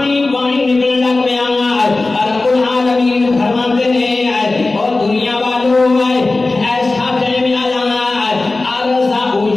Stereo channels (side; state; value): right; quieter; 3.3 dB